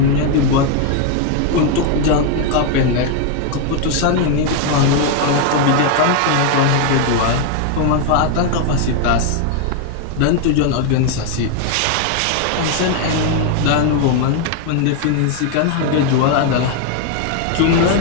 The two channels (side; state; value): both; different; correlation 0.01